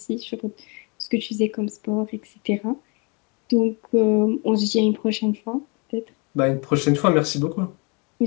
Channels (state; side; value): quieter; right; 31.8 dB